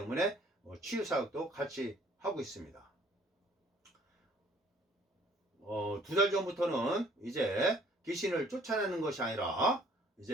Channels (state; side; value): normal; both; correlation 0.59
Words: 치유 사역도 같이 하고 있습니다. 2달 전부터는 이제 귀신을 쫓아내는 것이 아니라